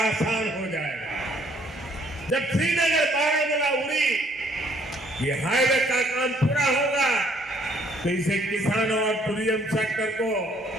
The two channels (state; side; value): normal; both; correlation 0.64